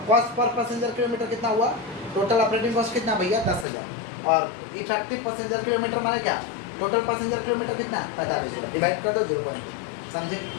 कॉस्ट पर पैसेंजर किलोमीटर कितना हुआ, टोटल ऑपरेटिंग कॉस्ट कितना भैया 10,000, और इफेक्टिव पैसेंजर किलोमीटर माने क्या, टोटल पैसेंजर किलोमीटर कितना है 45,000, डिवाइड कर दो 0.2, समझे,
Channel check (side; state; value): right; drops out; at 3.7 s